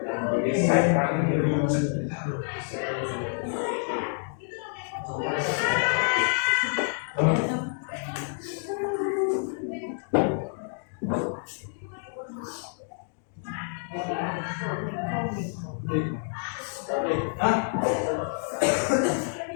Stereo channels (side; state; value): right; silent; 59 dB below the other